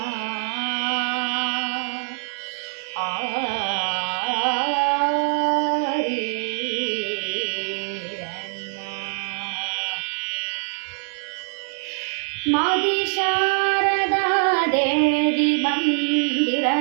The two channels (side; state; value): left; silent; digital silence